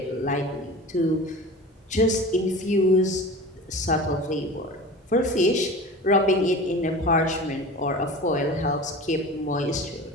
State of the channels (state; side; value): normal; both; correlation 0.35